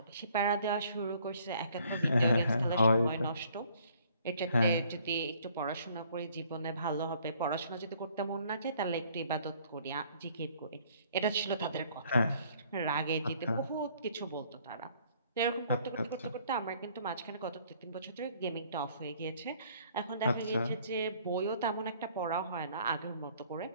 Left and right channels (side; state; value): both; inverted; correlation -0.60